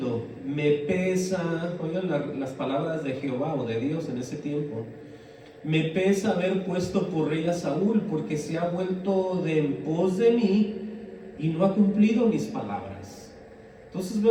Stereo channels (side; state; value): both; identical; correlation 1.00